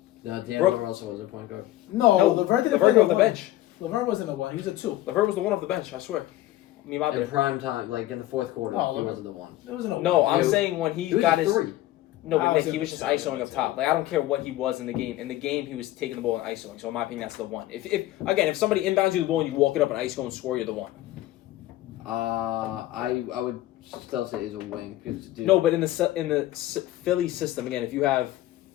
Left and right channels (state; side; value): quieter; right; 15.3 dB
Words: No, Brook- D'Angelo Russell was a point guard. No, Levert didn't play Levert came off the one. bench. Levert wasn't the one. He was a 2. Levert was the one off the bench. I swear. Me, my In bad. prime time, like in the fourth quarter, Oh, he Levert- wasn't the one. It wasn't a No, one. I'm He was- saying when he He was got a his. 3. No, I but was Nick, he gonna was just say ISOing that up too. top. Like I don't care what he was in the game. In the game, he was taking the ball and ISOing. So in my opinion, that's the one. If somebody inbounds you the ball and you walk it up and ISO and score, you're the one. I would still say he's a wing because dude. No, but in the Philly system again, if you have